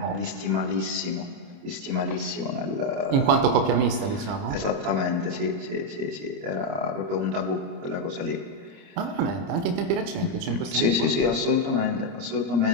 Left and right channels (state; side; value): late; left; 30 ms